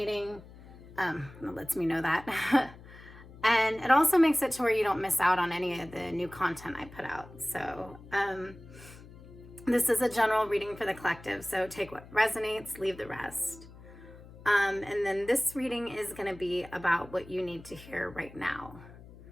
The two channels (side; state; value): left; noise; hum, 19 dB below the sound